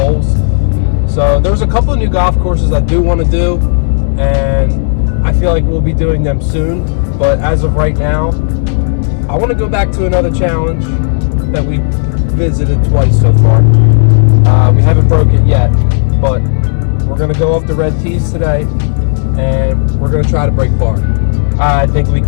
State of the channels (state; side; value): silent; right; digital silence